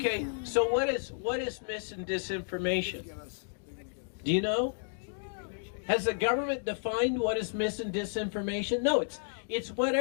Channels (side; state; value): right; silent; digital silence